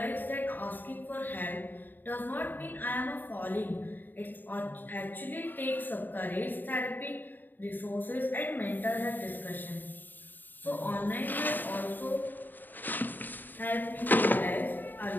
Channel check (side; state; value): right; late; 0.090 ms